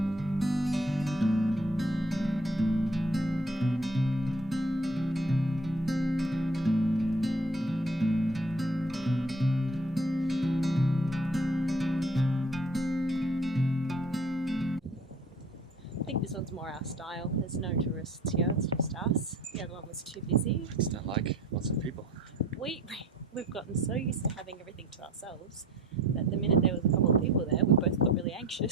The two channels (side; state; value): both; normal; correlation 0.51